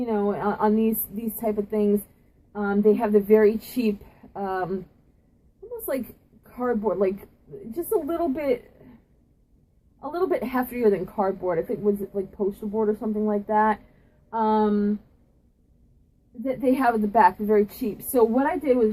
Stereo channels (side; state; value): both; identical; correlation 1.00